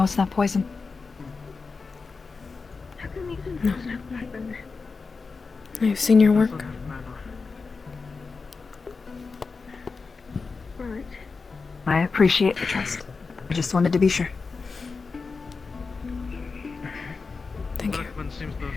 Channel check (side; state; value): right; quieter; 4.5 dB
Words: it's not poison. How come you didn't have blackburn? I've seen your work. Right. I appreciate the trust. I just wanted to be sure. Thank you. Blackburn seems to